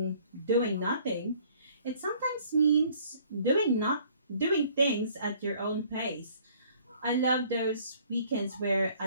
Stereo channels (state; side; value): inverted; both; correlation -0.57